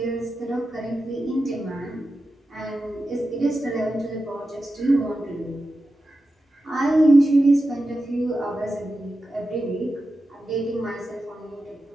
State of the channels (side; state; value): both; normal; correlation 0.91